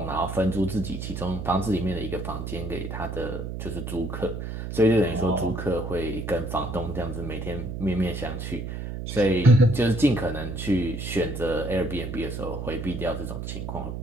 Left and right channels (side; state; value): right; noise; hum, 6 dB below the sound